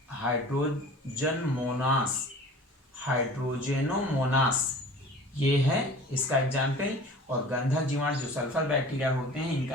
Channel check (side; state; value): both; normal; correlation 0.43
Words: हाइड्रोजेनोमोनास ये है इसका एग्जाम्पल। और गंधक जीवाणु जो सल्फर बैक्टीरिया होते हैं